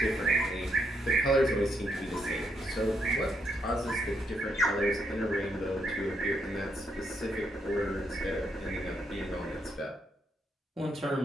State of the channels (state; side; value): normal; both; correlation 0.77